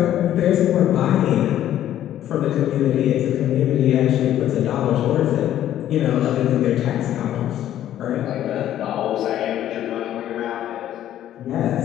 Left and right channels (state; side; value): quieter; right; 11.9 dB